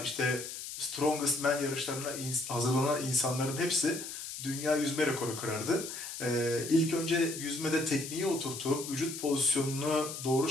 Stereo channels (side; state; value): left; noise; hiss, 8 dB below the sound